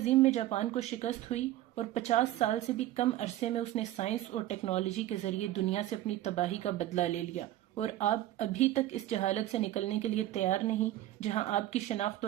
میں جاپان کو شکست ہوئی اور 50 سال سے بھی کم عرصے میں اس نے سائنس اور ٹیکنالوجی کے ذریعے دنیا سے اپنی تباہی کا بدلہ لے لیا، اور آپ ابھی تک اس جہالت سے نکلنے کے لیے تیار نہیں جہاں آپ کی شناخت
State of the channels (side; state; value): left; quieter; 14.4 dB